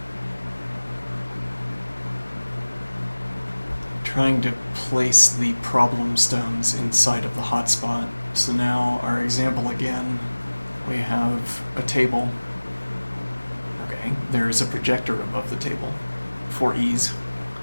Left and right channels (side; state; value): both; inverted; correlation -1.00